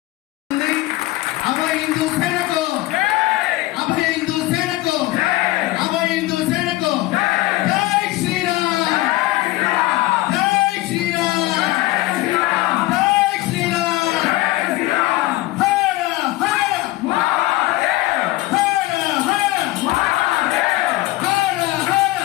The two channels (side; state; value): right; quieter; 18.3 dB